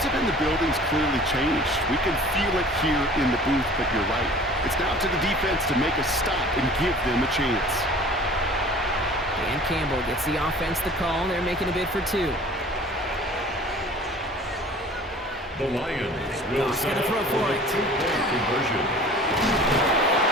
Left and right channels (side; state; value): both; normal; correlation 0.46